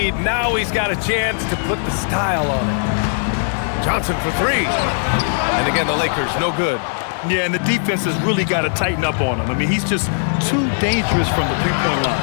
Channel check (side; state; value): right; silent; digital silence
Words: now he's got a chance to put the style on it. Johnson for 3. And again, the Lakers, no good. Yeah, and the defense has really got to tighten up on him. I mean, he's just too dangerous from the three-point line.